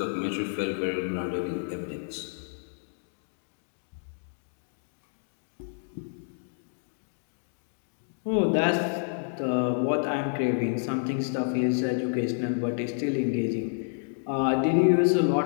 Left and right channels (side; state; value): right; silent; digital silence